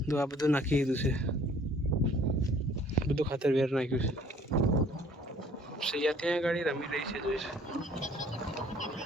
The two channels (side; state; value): both; normal; correlation 0.56